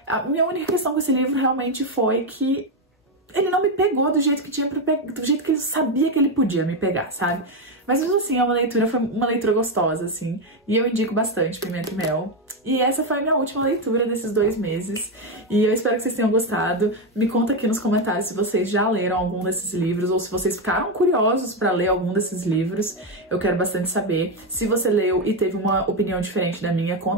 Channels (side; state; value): both; normal; correlation 0.08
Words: A minha única questão com esse livro realmente foi que ele não me pegou do jeito que tinha pra pegar, do jeito que ele sabia que ele podia me pegar, sabe? Mas mesmo assim, foi uma leitura gostosa, assim. E eu indico bastante Pimenta e Mel. E essa foi a minha última leitura desses 2 meses. E eu espero que vocês tenham gostado. Me conta aqui nos comentários se vocês já leram algum desses livros ou se vocês ficaram curiosos pra ler algum desses livros. Eu quero bastante saber. Se você leu e teve uma opinião diferente da minha,